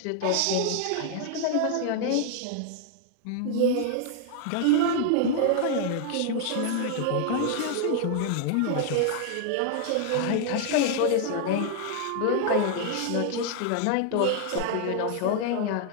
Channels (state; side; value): different; both; correlation 0.00